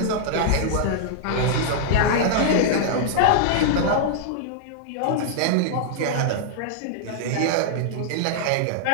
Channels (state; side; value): different; both; correlation -0.01